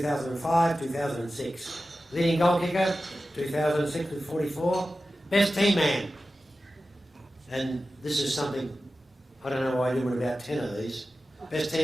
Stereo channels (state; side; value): normal; both; correlation 0.94